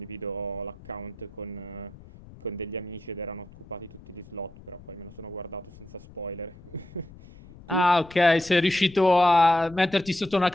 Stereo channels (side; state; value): left; noise; rumble, 20 dB below the sound